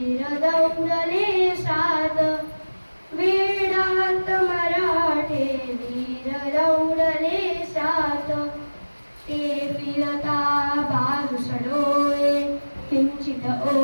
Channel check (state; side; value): inverted; both; correlation -1.00